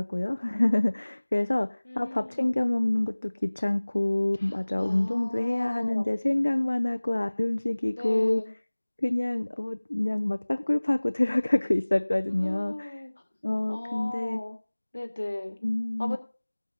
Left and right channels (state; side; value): inverted; both; correlation -1.00